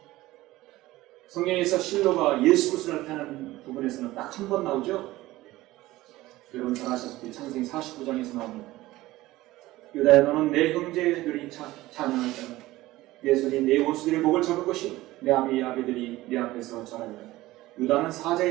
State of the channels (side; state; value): left; quieter; 17.6 dB